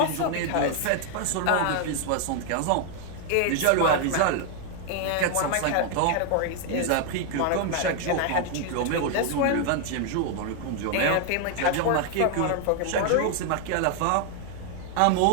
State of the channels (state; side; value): different; both; correlation 0.00